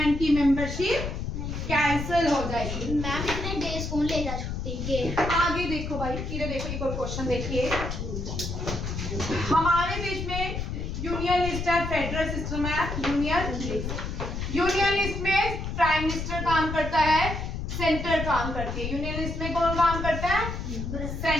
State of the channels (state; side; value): noise; left; rumble, 4 dB below the sound